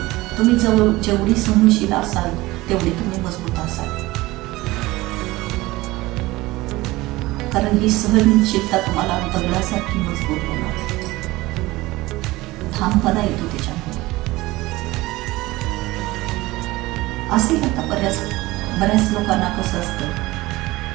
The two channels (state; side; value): quieter; left; 19.6 dB